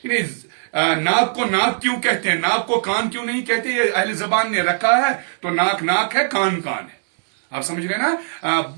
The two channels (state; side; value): silent; left; digital silence